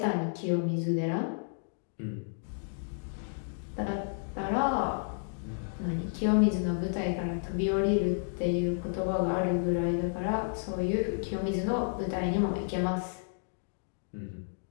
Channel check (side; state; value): right; silent; digital silence